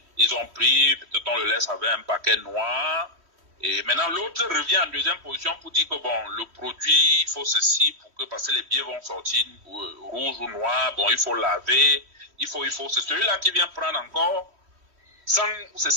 Ils ont pris, peut-être on le laisse avec un paquet noir. Et maintenant, l'autre revient en deuxième position pour dire que, bon, le produit, il faut ceci, parce que les billets vont sortir rouge ou noir, bon, il faut laver, il faut, c'est celui-là qui vient prendre encore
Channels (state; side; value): late; left; 3.1 ms